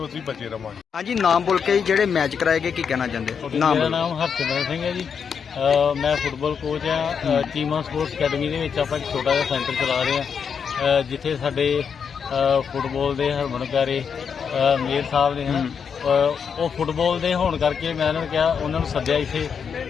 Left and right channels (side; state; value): right; quieter; 6.7 dB